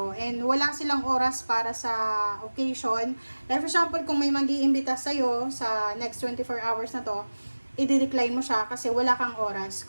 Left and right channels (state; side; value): inverted; both; correlation -1.00